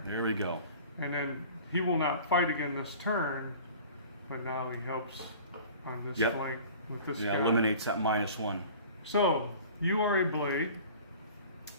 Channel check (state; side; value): inverted; both; correlation -0.43